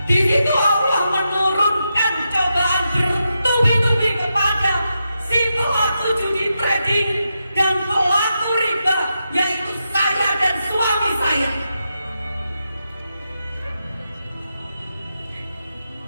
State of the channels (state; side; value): inverted; both; correlation -0.86